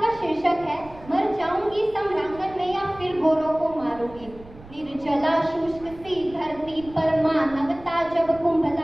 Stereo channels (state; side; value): noise; right; rumble, 20 dB below the sound